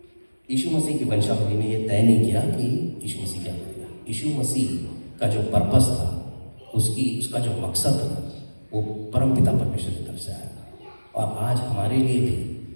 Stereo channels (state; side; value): inverted; both; correlation -1.00